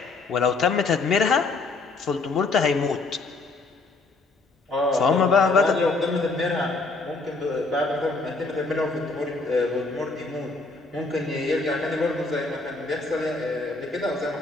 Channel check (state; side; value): quieter; right; 3.6 dB